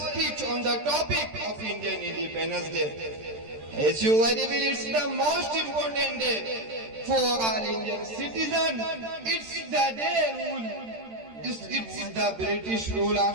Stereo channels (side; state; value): left; late; 13 ms